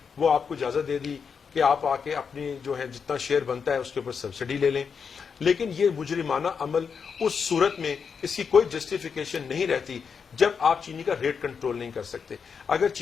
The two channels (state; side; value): quieter; right; 6.2 dB